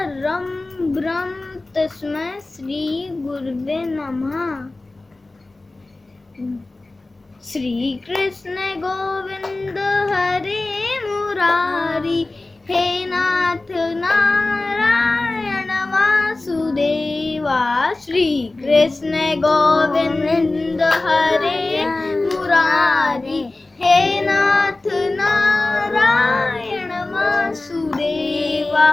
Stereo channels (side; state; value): right; quieter; 3.1 dB